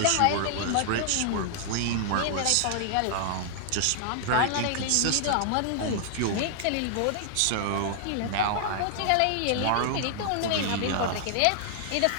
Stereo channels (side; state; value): both; different; correlation -0.01